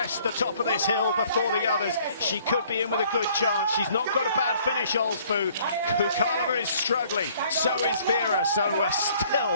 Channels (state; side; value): inverted; both; correlation -0.59